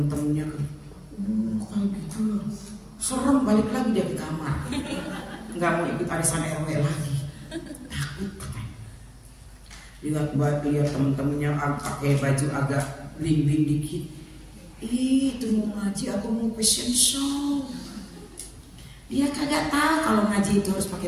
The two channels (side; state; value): both; identical; correlation 1.00